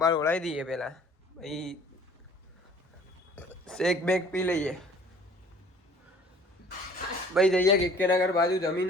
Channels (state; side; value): normal; both; correlation 0.52